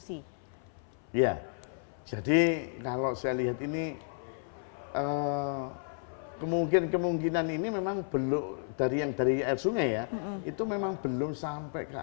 Ya, jadi kalau saya lihat ini kemungkinan ini memang belum dari air sungai ya, itu memang belum sampai ke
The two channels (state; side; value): silent; right; 56 dB below the other